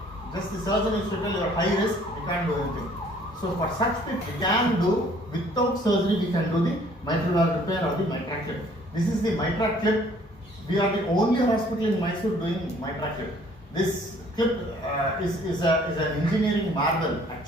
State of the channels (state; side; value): normal; both; correlation 0.58